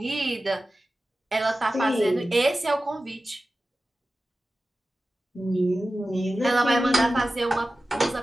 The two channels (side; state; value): both; normal; correlation 0.95